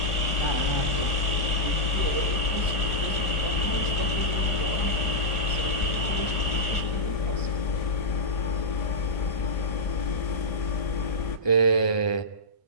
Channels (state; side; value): late; right; 1.4 ms